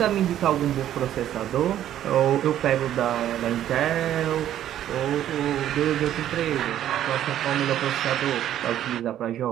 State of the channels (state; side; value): quieter; left; 11.6 dB